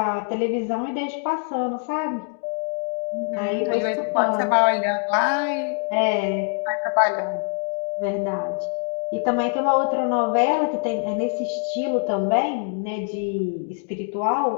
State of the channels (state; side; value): silent; right; digital silence